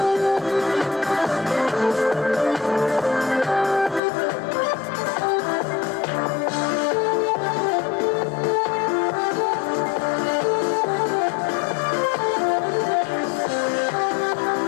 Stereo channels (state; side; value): drops out; right; at 4.0 s